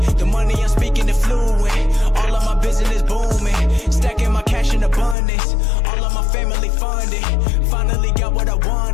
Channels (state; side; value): drops out; right; at 5.2 s